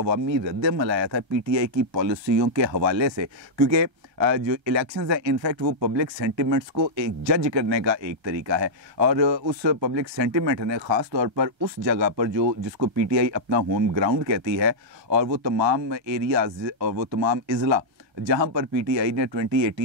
रद्दमल आया था पीटीआई की पॉलिसियों के हवाले से, क्योंकि जो इलेक्शंस हैं इनफैक्ट वो पब्लिक सेंटिमेंट्स को एक जज करने का एक तरीका है, और उस पब्लिक सेंटिमेंट ने ख़ास तौर पर उस जगह पर जो जिसको पीटीआई अपना होम ग्राउंड कहती है और वो तमाम एरियाज़ और वो तमाम इज़ला जहां पर पीटीआई ने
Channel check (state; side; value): late; left; 1.3 ms